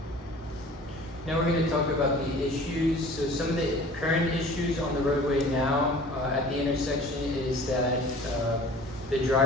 Now we're going to talk about the issues. So some of the current issues on the roadway now at the intersection is that the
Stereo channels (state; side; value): normal; both; correlation 0.46